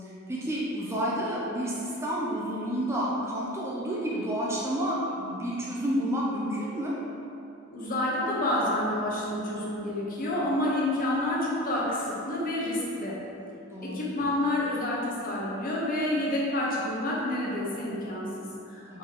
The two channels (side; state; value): both; normal; correlation 0.35